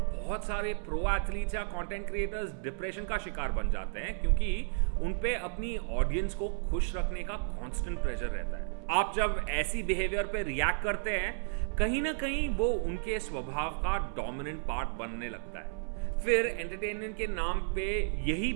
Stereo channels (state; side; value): silent; left; 56 dB below the other